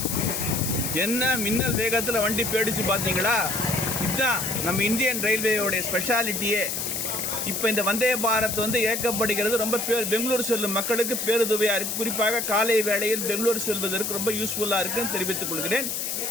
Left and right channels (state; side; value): noise; left; hiss, 2 dB below the sound